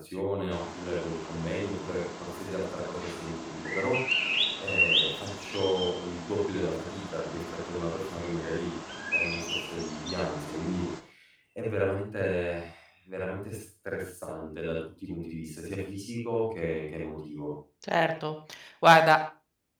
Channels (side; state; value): both; identical; correlation 1.00